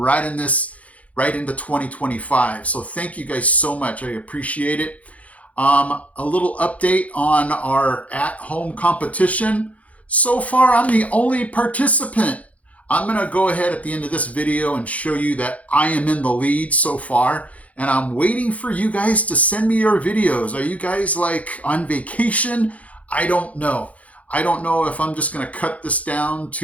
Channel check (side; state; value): right; late; 0.067 ms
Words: this right into 2025. So thank you guys so much. I appreciate it. A little update on our at-home competition. So far, I'm the only participant. I'm going to go ahead at the end of this video and show you that I am in the lead so far. And I'm waiting for you guys to send me your videos. Are you guys like on vacation? I don't know. I don't know if I'm just going to cut this down